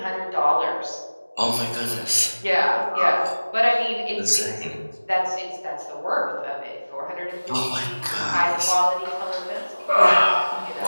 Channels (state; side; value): inverted; both; correlation -1.00